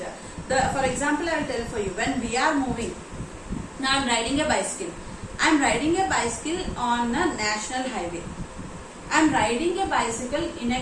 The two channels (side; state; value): both; identical; correlation 1.00